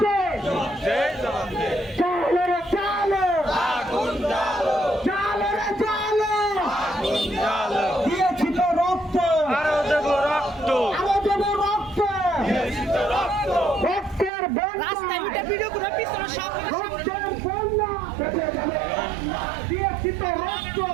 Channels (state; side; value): drops out; left; at 14.3 s